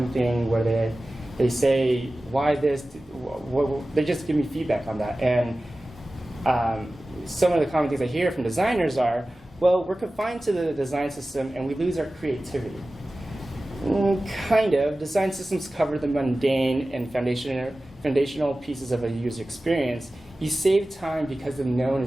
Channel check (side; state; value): both; normal; correlation 0.96